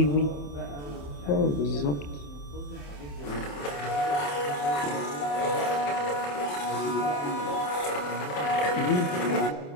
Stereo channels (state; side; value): late; right; 28 ms